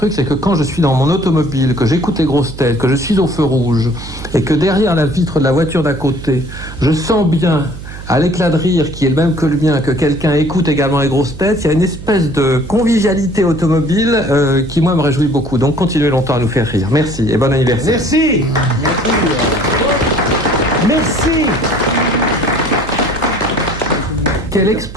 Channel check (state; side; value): noise; right; hum, 12 dB below the sound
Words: c'est que quand je suis dans mon automobile, que j'écoute les grosses têtes, que je suis au feu rouge et que derrière la vitre de la voiture d'à côté, je sens bien à l'éclat de rire qui est le même que le mien, que quelqu'un écoute également les grosses têtes, il y a une espèce de convivialité automobile qui, moi, me réjouit beaucoup. Donc, continuez longtemps à nous faire rire. Merci et bon anniversaire. Merci. Merci. Quelle